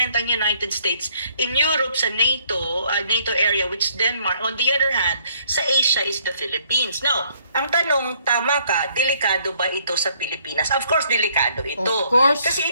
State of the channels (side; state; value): both; inverted; correlation -0.65